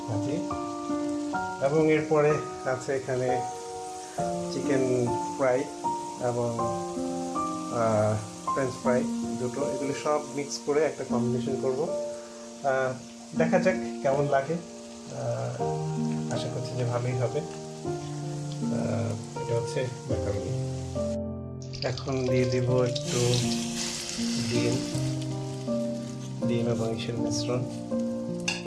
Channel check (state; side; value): identical; both; correlation 1.00